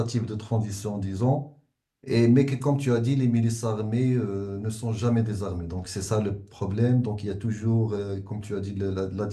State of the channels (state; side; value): identical; both; correlation 1.00